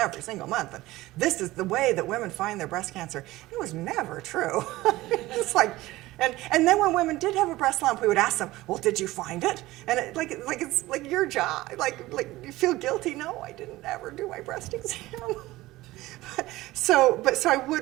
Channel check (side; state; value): left; quieter; 18.1 dB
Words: single month. And this is the way that women find their breast cancer. It was never true. It's like, and then when women did have a breast lump, we would ask them, well, did you find it? And it's like your job. Like you feel guilty? No, I didn't ever do my breast exam. So I